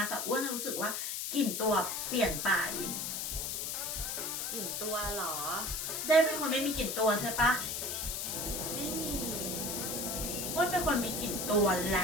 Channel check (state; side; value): noise; left; hiss, 2 dB below the sound